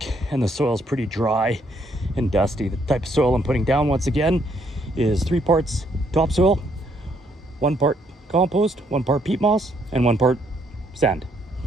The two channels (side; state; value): both; normal; correlation 0.70